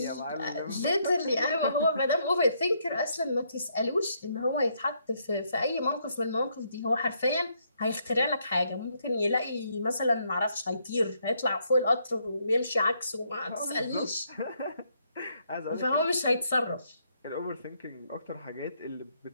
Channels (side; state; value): both; inverted; correlation -0.73